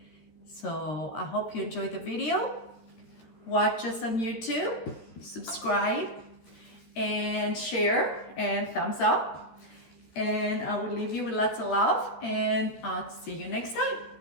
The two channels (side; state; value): right; late; 13 ms